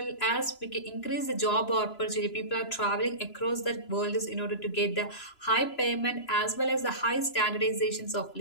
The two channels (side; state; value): right; late; 3.0 ms